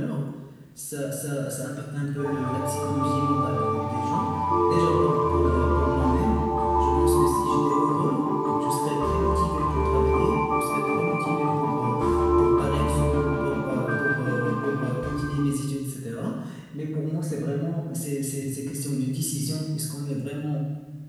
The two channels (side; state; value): both; identical; correlation 1.00